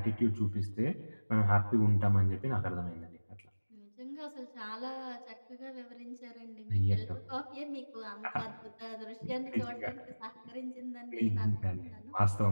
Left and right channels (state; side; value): inverted; both; correlation -1.00